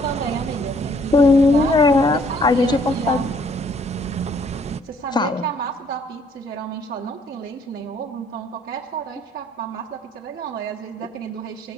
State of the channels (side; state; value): both; normal; correlation 0.63